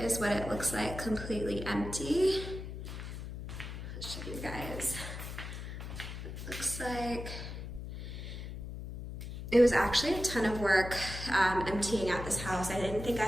is what it looks like completely empty. I'll show you guys. It looks like it was actually a ton of work emptying out this house. I didn't think I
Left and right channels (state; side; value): noise; left; hum, 8 dB below the sound